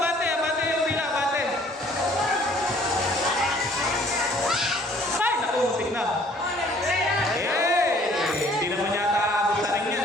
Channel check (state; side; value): normal; both; correlation 0.57